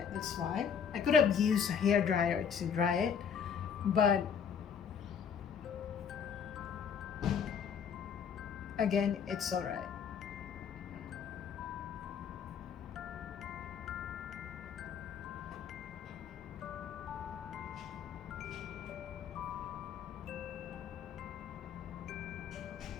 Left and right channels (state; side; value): quieter; right; 7.1 dB